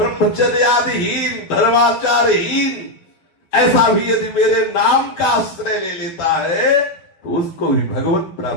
धर्माचारहीन, ऐसा भी यदि मेरे नाम का आश्रय ले लेता है तो उसको भी भगवत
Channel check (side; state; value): right; late; 12 ms